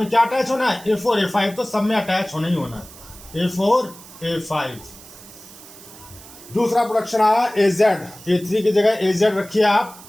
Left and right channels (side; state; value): right; noise; hiss, 19 dB below the sound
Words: क्या अटैच होना है? A4 A5, तो सब में अटैच होना ही होना है, A4 A5। दूसरा प्रोडक्शन आया AZ। A3 की जगह AZ रखिए आप,